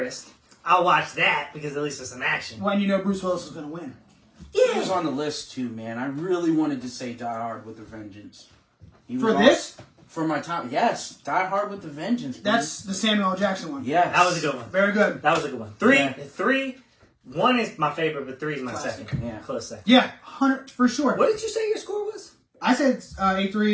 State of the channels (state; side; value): identical; both; correlation 1.00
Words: I'll watch that because at least there's some action. When you know Bruce Willis is going to win. He was on the list too, man. I really wanted to say Die Hard with a Vengeance. For this? For my top, yes. Die Hard with a Vengeance. Please. That's the Samuel L. Jackson one. Yes. That was a good one. Very good. That was a good one. Three, one is my favorite, but 3 is my Classic. second. Yeah. Close second. Yeah, 100 for sure. What did you say your score was? I said